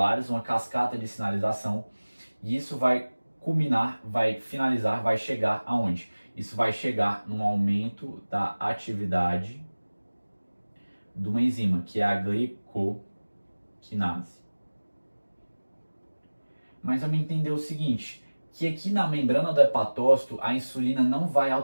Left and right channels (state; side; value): inverted; both; correlation -1.00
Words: uma cascata de sinalização, e isso vai culminar, vai finalizar, vai chegar aonde? Isso vai chegar num aumento da atividade de uma enzima, que é a glicoquinase. Mas vamos entender o seguinte, que aqui na membrana do hepatócito a insulina não vai